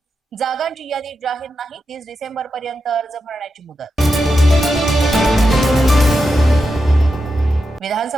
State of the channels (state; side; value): normal; both; correlation 0.88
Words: जागांची यादी जाहीर नाही. 30 डिसेंबर पर्यंत अर्ज भरण्याची मुदत.